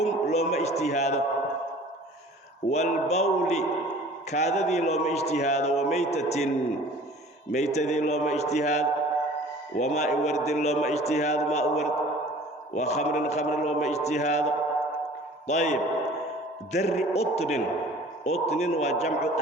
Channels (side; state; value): both; normal; correlation 0.47